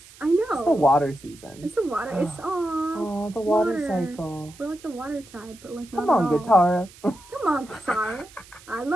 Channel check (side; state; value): right; noise; hiss, 22 dB below the sound